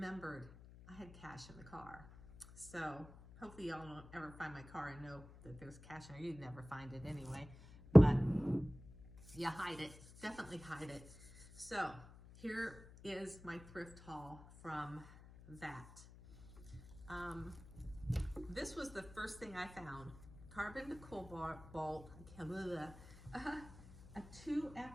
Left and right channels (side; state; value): left; noise; hum, 18 dB below the sound